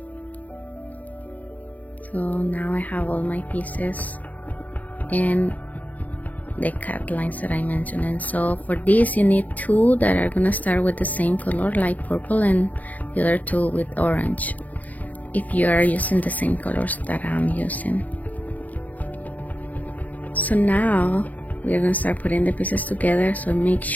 So now I have all my pieces and the cut lines that I mentioned, and so for this you need two that are gonna start with the same color, like purple, and the other two with orange, if you are using the same colors that I'm using. So now we're gonna start putting the pieces together, so make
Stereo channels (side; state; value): right; late; 0.075 ms